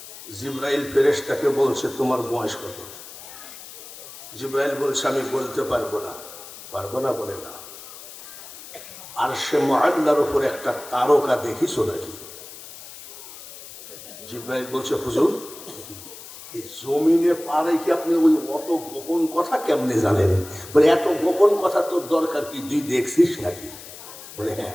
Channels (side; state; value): left; noise; hiss, 15 dB below the sound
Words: জিবরাইল ফেরেশতাকে বলছে তোমার বয়স কত জিবরাইল বলছে আমি বলতে পারবো না বলে না আর সে মুআল্লার উপর একটা তারকা দেখিছো নাকি জিবরাইল বলছে হুজুর এই জমিনে পারে কি আপনি ওই অত গোপন কথা কেমনে জানেন বলে এত গোপন কথা তোর দরকার কি তুই দেখছিস নাকি বলে